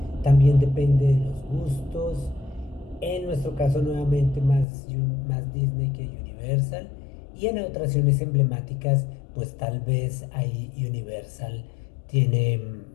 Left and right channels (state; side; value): drops out; right; at 4.7 s